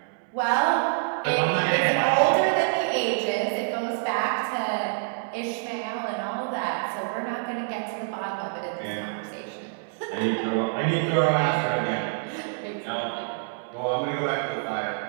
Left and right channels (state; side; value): silent; left; digital silence